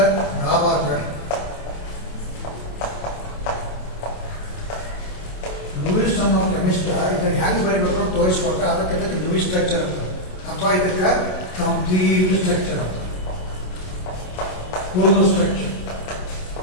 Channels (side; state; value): right; late; 27 ms